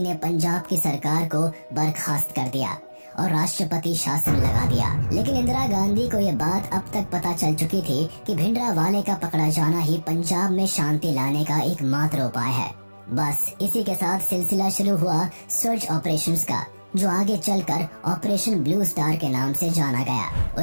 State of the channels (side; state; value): both; inverted; correlation -1.00